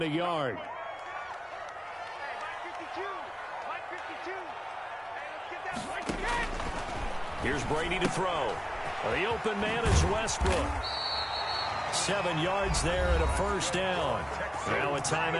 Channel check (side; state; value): both; identical; correlation 1.00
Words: a yard. Here's Brady to throw. The open man is Westbrook. 7 yards there and a 1st down. Now a